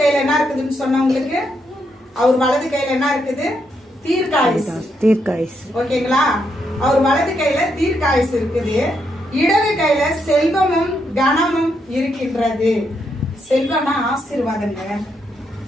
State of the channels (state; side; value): normal; both; correlation 0.79